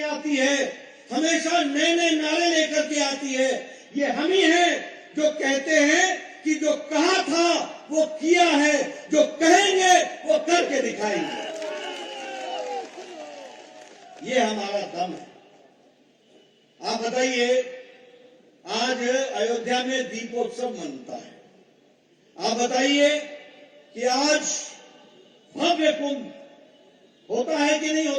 आती है, हमेशा नए नए नारे लेकर के आती है। ये हम ही हैं जो कहते हैं कि जो कहा था वो किया है, जो कहेंगे वो करके दिखाएंगे। ये हमारा दम है। आप बताइए, आज अयोध्या में दीपोत्सव मनता है। आप बताइए कि आज भव्य कुंभ होता है कि नहीं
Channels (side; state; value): both; identical; correlation 1.00